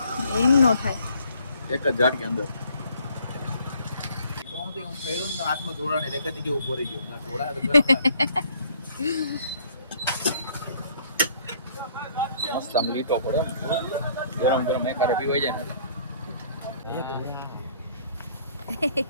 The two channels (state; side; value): inverted; both; correlation -0.60